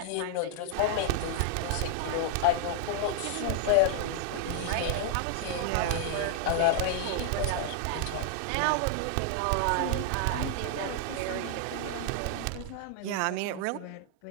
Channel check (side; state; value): both; different; correlation -0.01